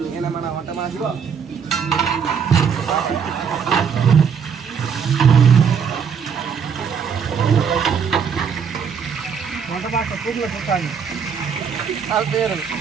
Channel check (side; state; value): left; quieter; 6.8 dB